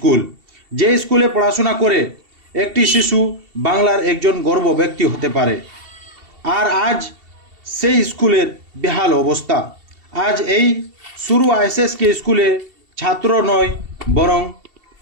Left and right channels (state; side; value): late; left; 2.7 ms